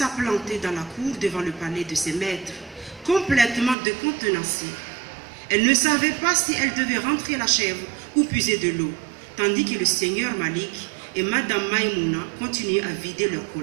plantée dans la cour devant le palais de ses maîtres, complètement décontenancée. Elle ne savait pas si elle devait rentrer la chèvre ou puiser de l'eau, tandis que le seigneur Malik et Madame Maïmouna continuaient à vider leur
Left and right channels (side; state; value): left; drops out; at 3.8 s